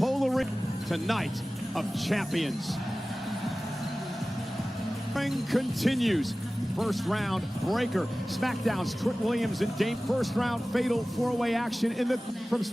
ring tonight of champions. Ring continues. First round breaker. SmackDown's Trick Williams and Dame. First round fatal four-way action from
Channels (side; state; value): both; normal; correlation 0.97